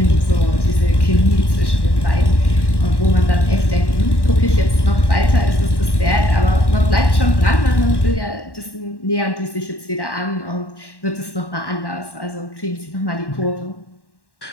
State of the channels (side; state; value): right; late; 1.1 ms